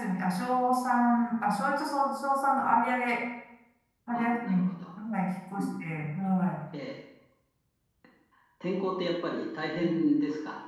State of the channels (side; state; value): both; identical; correlation 1.00